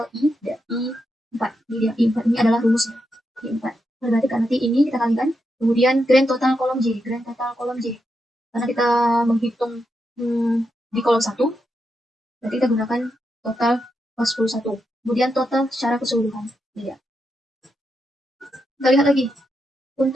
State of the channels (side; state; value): both; normal; correlation 0.85